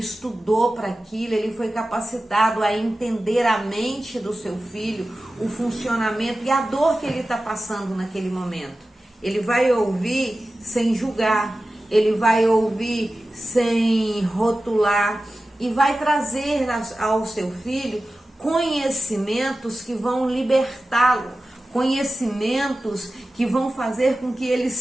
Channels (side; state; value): both; normal; correlation 0.95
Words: para aquilo, ele foi capacitado a entender a mente do seu filho, o funcionamento e a dor que ele está passando naquele momento. Ele vai ouvir sem julgar, ele vai ouvir sem rotular e vai trazer ao seu filho conhecimentos que vão libertá-lo, conhecimentos que vão fazer com que ele